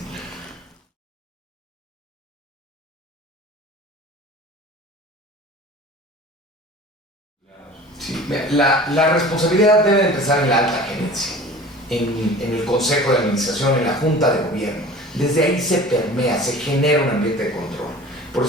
Sí, la responsabilidad debe empezar en la alta gerencia, en el consejo de administración, en la junta de gobierno. Desde ahí se permea, se genera un ambiente de control. Por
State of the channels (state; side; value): normal; both; correlation 0.41